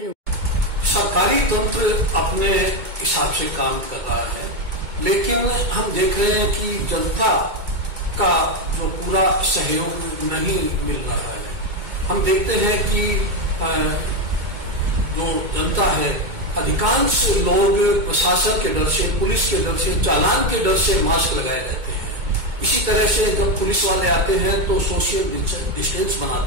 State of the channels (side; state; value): left; late; 2.2 ms